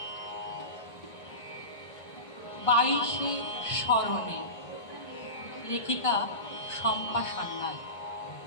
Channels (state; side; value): late; right; 1.5 ms